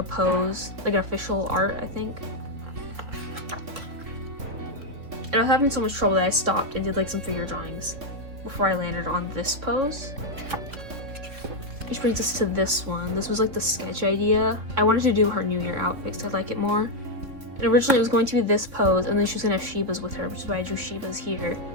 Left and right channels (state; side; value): late; left; 3.3 ms